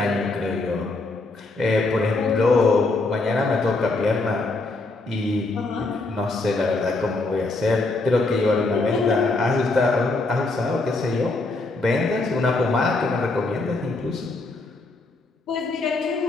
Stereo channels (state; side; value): quieter; right; 3.3 dB